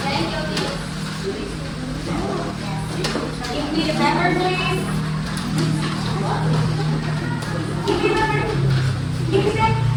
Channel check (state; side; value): identical; both; correlation 1.00